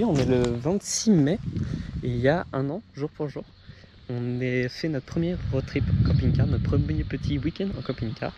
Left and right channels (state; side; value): identical; both; correlation 1.00